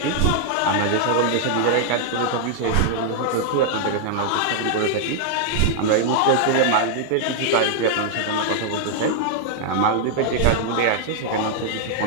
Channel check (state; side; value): different; both; correlation -0.01